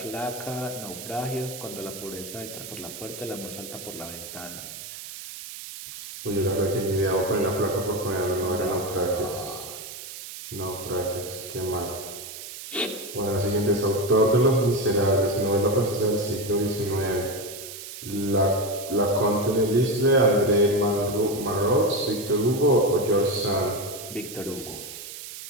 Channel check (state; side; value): noise; right; hiss, 11 dB below the sound